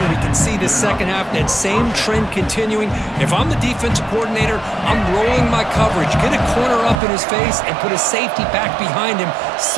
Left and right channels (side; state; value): left; drops out; at 7.0 s